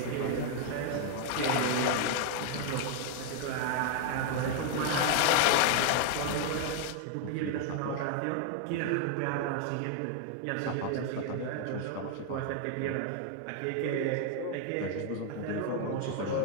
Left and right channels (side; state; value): both; different; correlation 0.00